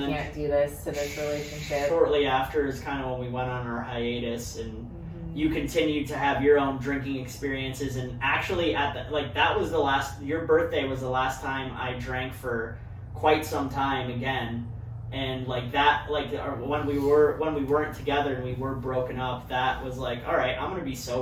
do this to this relationship. Shortly after is kind of when we went on our hiatus, and you continued to have your own drinking experiences, and actually that was your birthday was the last time I drank for quite some time again. And when we weren't together and we were broken up, that was like, all right, I'm gonna be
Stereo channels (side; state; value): both; identical; correlation 1.00